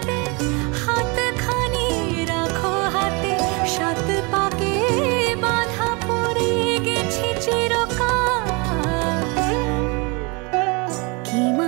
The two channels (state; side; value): quieter; left; 29.9 dB